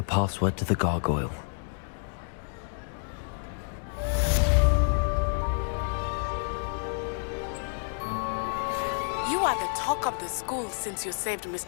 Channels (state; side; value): silent; right; 59 dB below the other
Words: password to the gargoyle. You are the talk of the school since you saved